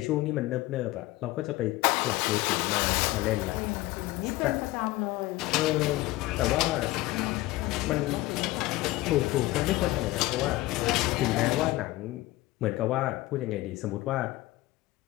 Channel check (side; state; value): right; quieter; 18.5 dB